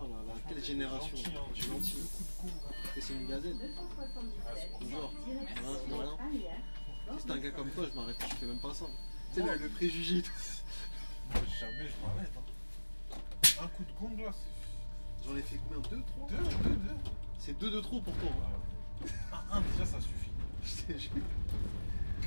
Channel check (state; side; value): inverted; both; correlation -1.00